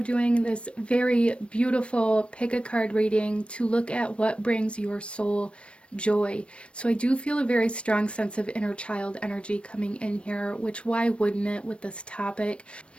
this very beautiful pick a card reading to look at what brings your soul joy. So I do feel a very strong sense of inner child energy coming in here, which why wouldn't it with this topic?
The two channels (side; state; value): right; late; 0.059 ms